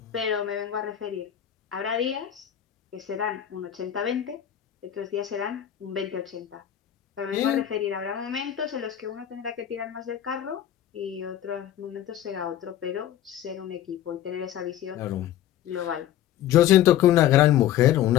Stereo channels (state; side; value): quieter; right; 11.4 dB